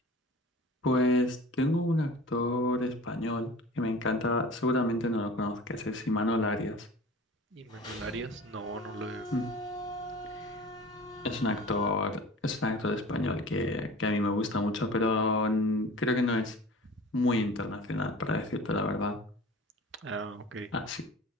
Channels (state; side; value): normal; both; correlation 0.40